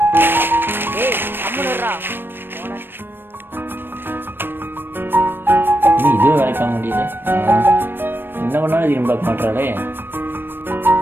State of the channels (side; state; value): left; late; 0.098 ms